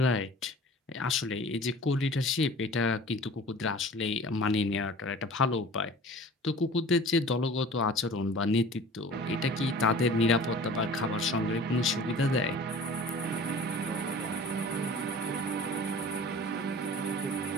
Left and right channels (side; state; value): both; normal; correlation 0.43